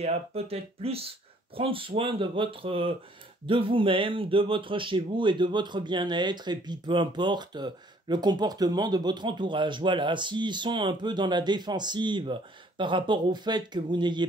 à peut-être plus prendre soin de vous-même, de votre chez vous et de votre bien-être, et puis peu importe le comportement de votre entourage. Voilà, s'ils sont un peu dans la défensive par rapport au fait que vous n'ayez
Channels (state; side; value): normal; both; correlation 0.61